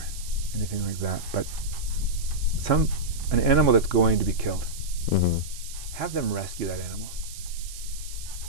anything like that, but an animal that's going to be killed. Mm-hmm. Have them rescue that animal.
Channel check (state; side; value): noise; right; hiss, 13 dB below the sound